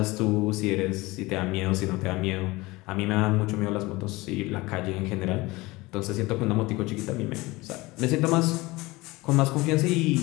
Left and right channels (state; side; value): quieter; right; 21.6 dB